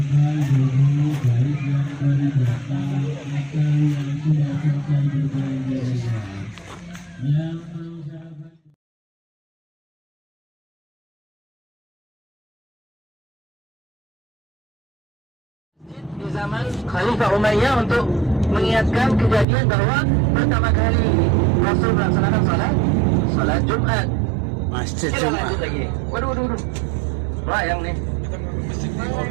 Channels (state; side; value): drops out; left; at 19.5 s